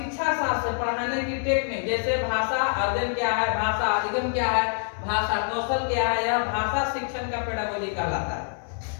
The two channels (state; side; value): silent; right; digital silence